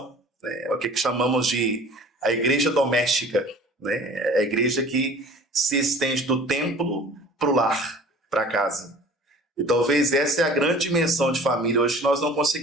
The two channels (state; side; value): normal; both; correlation 0.46